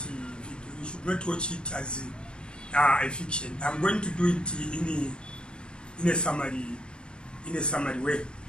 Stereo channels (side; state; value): right; late; 0.054 ms